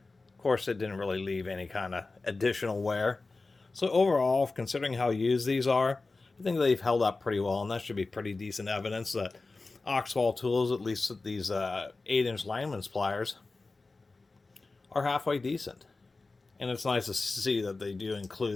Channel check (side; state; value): right; quieter; 3.6 dB